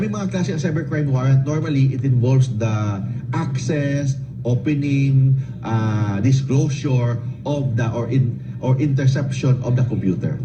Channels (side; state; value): both; identical; correlation 1.00